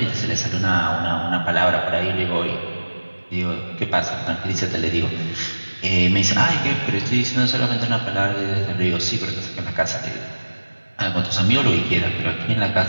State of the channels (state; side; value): inverted; both; correlation -1.00